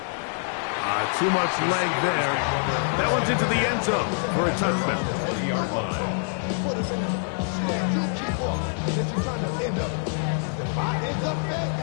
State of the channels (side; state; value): right; silent; 61 dB below the other